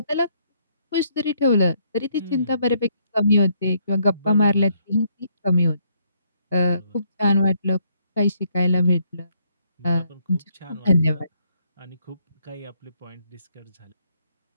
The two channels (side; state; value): both; inverted; correlation -0.71